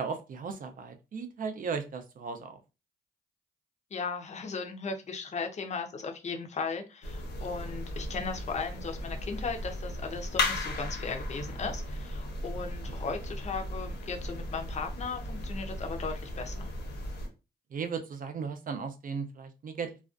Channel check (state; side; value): normal; both; correlation 0.37